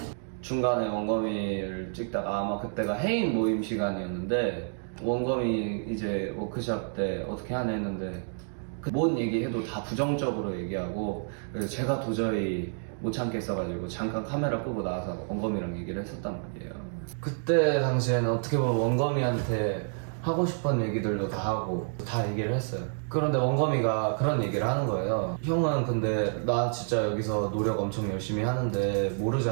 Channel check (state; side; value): silent; left; digital silence